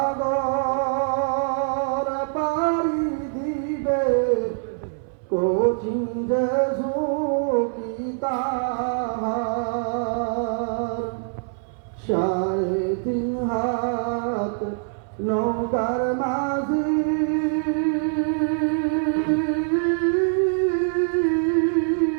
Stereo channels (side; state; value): left; silent; 63 dB below the other